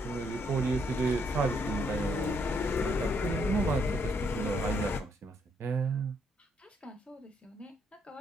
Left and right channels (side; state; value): both; normal; correlation 0.73